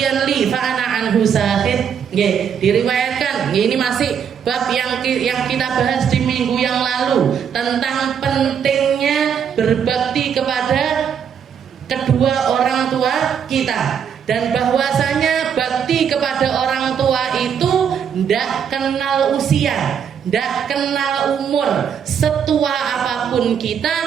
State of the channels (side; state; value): left; quieter; 7.8 dB